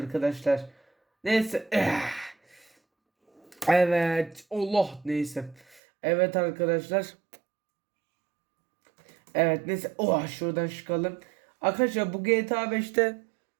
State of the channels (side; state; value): left; drops out; at 5.8 s